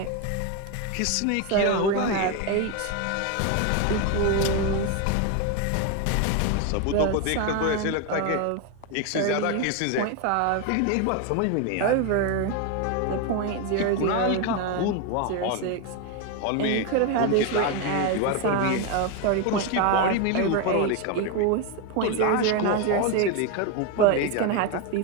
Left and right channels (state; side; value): different; both; correlation 0.02